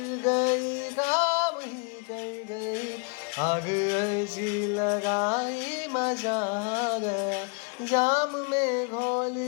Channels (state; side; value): quieter; right; 35.7 dB